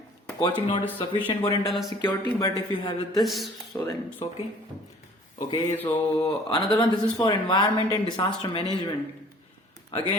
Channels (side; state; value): both; normal; correlation 0.52